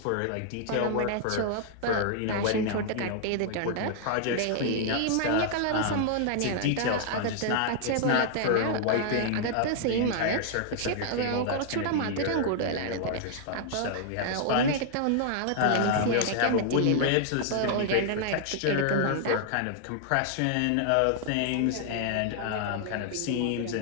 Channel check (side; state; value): both; different; correlation -0.01